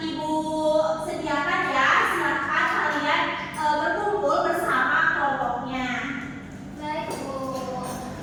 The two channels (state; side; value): identical; both; correlation 1.00